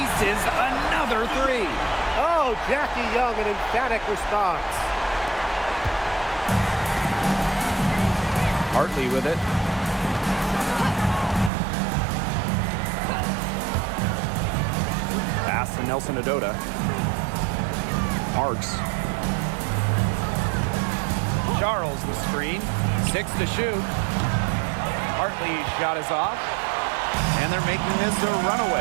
another 3. Oh, Jackie Young, an emphatic response. Hartley with it. to Nelson Adota. Parks. Charles the screen. 6 to shoot. Hartley's shot is off. And they're making this a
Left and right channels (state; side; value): drops out; left; at 11.5 s